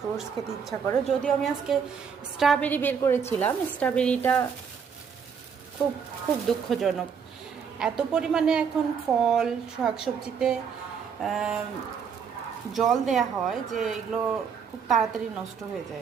খেতে ইচ্ছা করে। যদিও আমি আজকে স্ট্রবেরি বের করেছিলাম, স্ট্রবেরিটা খুব খুব দুঃখজনক। এত পরিমাণে এখন ফল শাকসবজিতে জল দেয়া হয় যে এগুলো খুব তাড়াতাড়ি নষ্ট হয়ে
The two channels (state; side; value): quieter; left; 6.7 dB